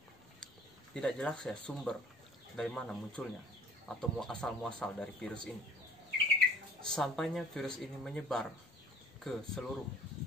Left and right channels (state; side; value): normal; both; correlation 0.50